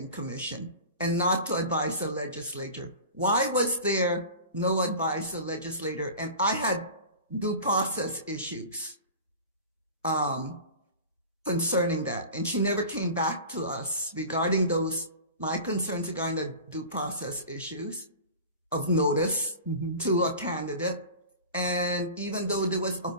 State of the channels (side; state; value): both; inverted; correlation -0.35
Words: Commission and not to advise the legislature. Why was there no advice to the legislator? And I had due process issues concerning that. And she never came back to us regarding my concerns regarding the due process issues of notice to a candidate. And even though there was a